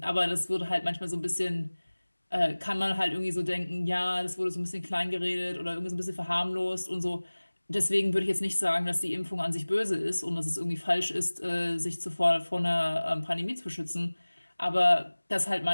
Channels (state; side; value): inverted; both; correlation -1.00